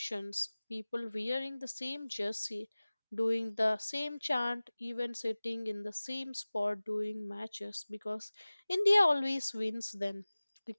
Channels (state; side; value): inverted; both; correlation -0.99